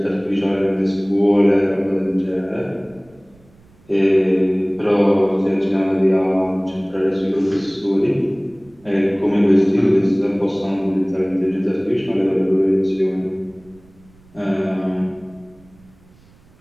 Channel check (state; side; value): noise; right; rumble, 29 dB below the sound